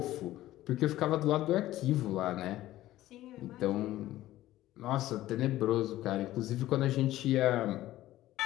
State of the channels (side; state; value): right; quieter; 15.1 dB